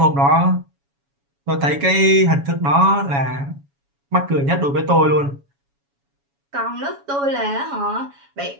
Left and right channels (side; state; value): left; late; 7.1 ms